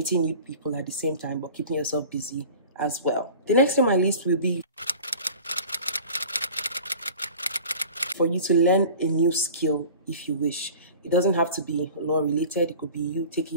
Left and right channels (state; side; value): inverted; both; correlation -0.41